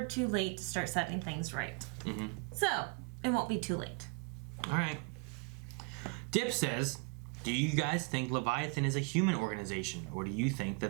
too late to start setting things right. Mm-hmm. So, it won't be too late. All right. Dip says, do you guys think Leviathan is a human organization, or do you think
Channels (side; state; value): left; quieter; 33.2 dB